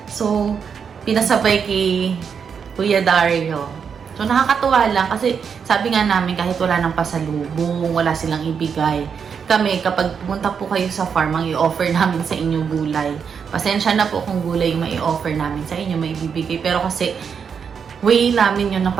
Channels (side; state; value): left; quieter; 6.7 dB